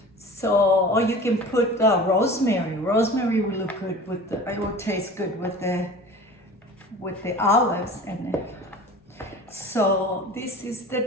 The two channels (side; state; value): both; normal; correlation 0.39